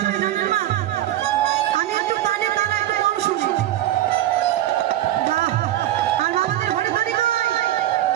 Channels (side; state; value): left; quieter; 13.3 dB